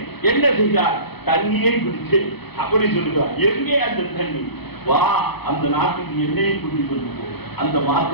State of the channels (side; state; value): right; late; 0.98 ms